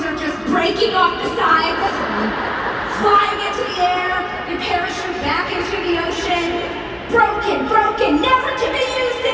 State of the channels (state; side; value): identical; both; correlation 1.00